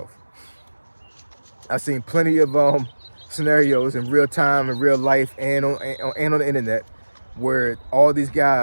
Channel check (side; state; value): both; inverted; correlation -1.00